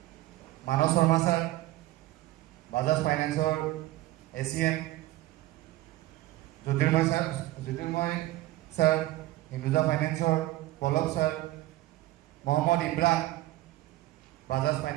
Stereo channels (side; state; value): left; quieter; 16.7 dB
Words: মানৱ শৰ্মা ছাৰ বাজাজ ফাইনেন্সৰ ACM, জ্যোতিৰ্ময় ছাৰ হিন্দুজা ফাইনেন্সৰ, পলক ছাৰ, মহম্মদ ইমৰান বাজাজ